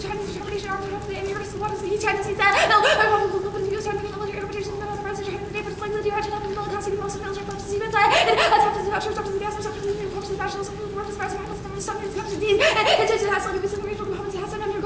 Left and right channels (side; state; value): both; identical; correlation 1.00